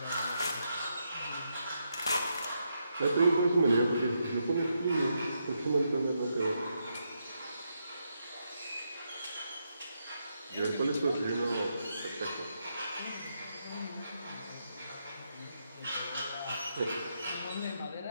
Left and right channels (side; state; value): both; inverted; correlation -0.81